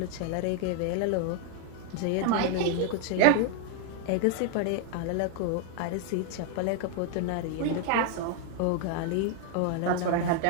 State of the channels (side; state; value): both; different; correlation 0.01